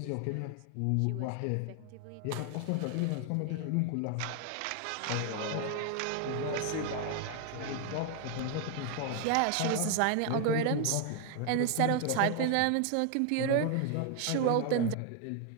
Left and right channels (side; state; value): both; different; correlation 0.00